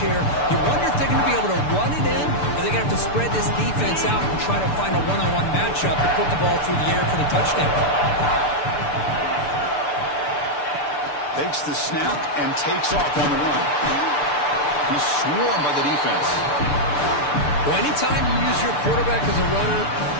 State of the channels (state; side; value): late; right; 6.8 ms